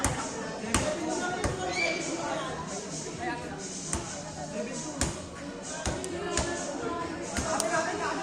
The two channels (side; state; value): both; identical; correlation 1.00